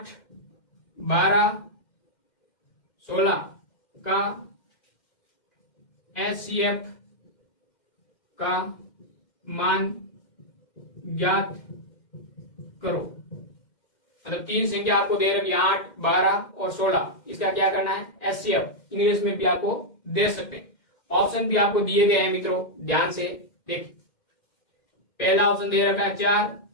12, 16 का HCF का मान ज्ञात करो। मतलब 3 संख्या आपको दे रखी 8, 12 और 16, इसका क्या करना है? HCF। इंग्लिश में भी आपको दे सकते हैं। ऑप्शन भी आपको दिए गए हैं मित्रों, ध्यान से देखिए। पहला ऑप्शन दे रखा है 4,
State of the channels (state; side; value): late; right; 2.1 ms